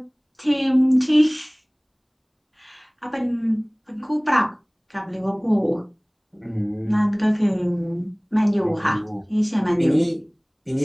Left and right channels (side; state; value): both; identical; correlation 1.00